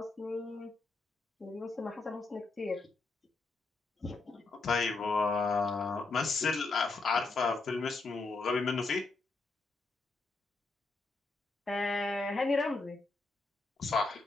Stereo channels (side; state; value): right; quieter; 3.6 dB